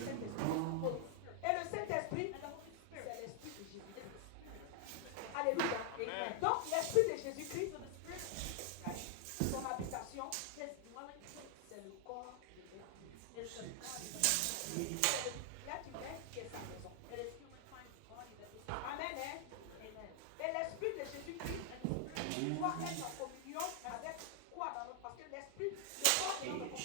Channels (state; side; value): different; both; correlation 0.00